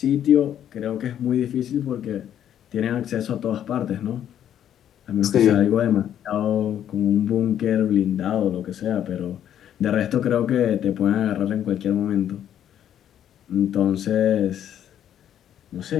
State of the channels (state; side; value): quieter; right; 10.3 dB